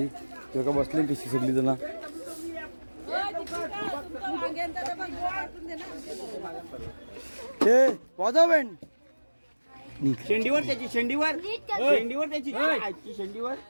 तेव्हा बसले कशी सगळी जण. हे वाजव बँड शेंडीवर त्याची शेंडीवर त्याची शेंडीवर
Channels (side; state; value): both; inverted; correlation -1.00